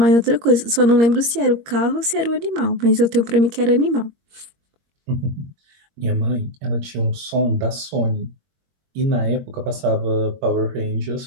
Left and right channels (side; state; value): left; late; 21 ms